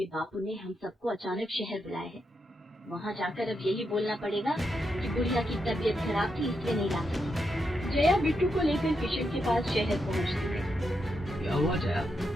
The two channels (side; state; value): both; normal; correlation 0.83